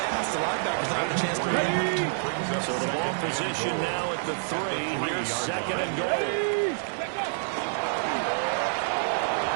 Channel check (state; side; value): silent; left; digital silence